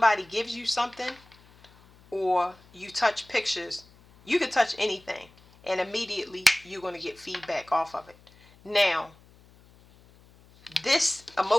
gives you something, or you touch pictures. You can touch anything, and immediately you're going to get feedback off of it. Now, this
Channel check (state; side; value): noise; left; hum, 27 dB below the sound